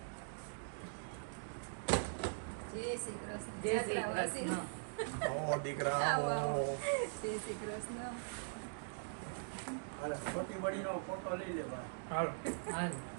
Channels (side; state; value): left; silent; digital silence